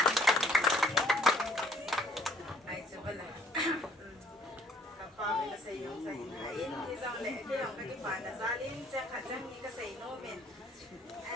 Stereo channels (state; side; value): normal; both; correlation 0.58